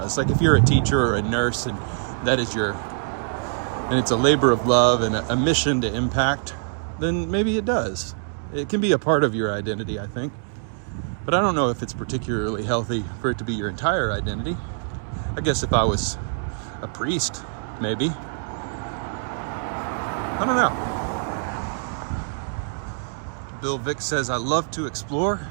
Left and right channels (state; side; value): silent; left; digital silence